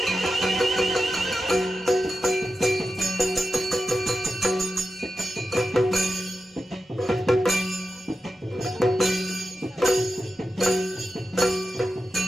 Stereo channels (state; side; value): normal; both; correlation 0.91